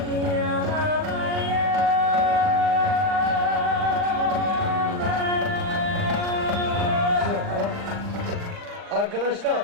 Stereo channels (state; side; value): late; left; 39 ms